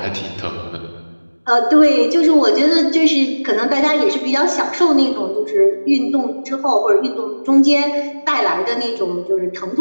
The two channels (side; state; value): both; inverted; correlation -1.00